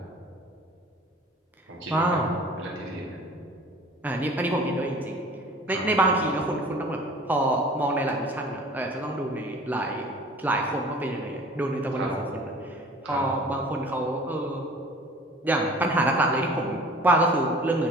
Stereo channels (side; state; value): both; normal; correlation 0.46